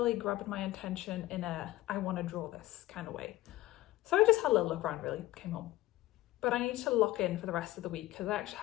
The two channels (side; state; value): right; quieter; 16.5 dB